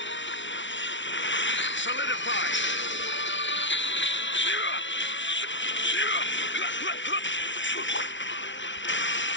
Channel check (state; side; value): late; right; 0.55 ms